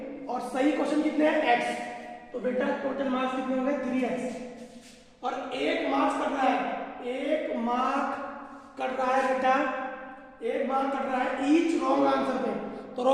और सही क्वेश्चन कितने हैं? x, तो बेटा टोटल मार्क्स कितने हो गए? 3x। और 1 मार्क्स कट रहा है, 1 मार्क कट रहा है बेटा, 1 मार्क कट रहा है ईच रॉन्ग आंसर पे, तो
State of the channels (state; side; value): identical; both; correlation 1.00